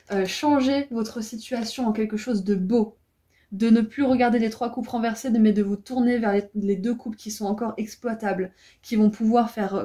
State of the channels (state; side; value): identical; both; correlation 1.00